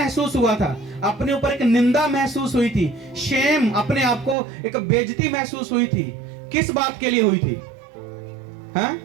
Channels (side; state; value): left; drops out; at 4.4 s